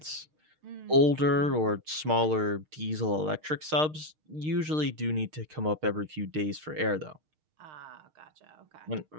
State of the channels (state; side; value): late; left; 6.5 ms